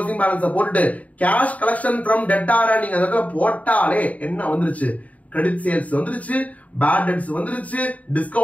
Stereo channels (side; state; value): right; late; 0.070 ms